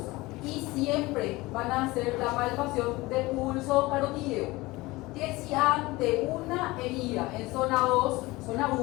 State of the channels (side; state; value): right; quieter; 21.0 dB